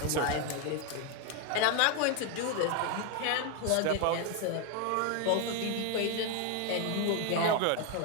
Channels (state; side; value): different; both; correlation 0.02